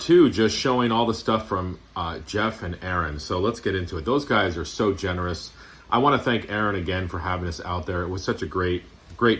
just showing all the stuff from Jeff and Aaron. So let's get into it. Those guys are so generous. I want to thank Aaron again for having us out there. It was such a great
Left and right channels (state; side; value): identical; both; correlation 1.00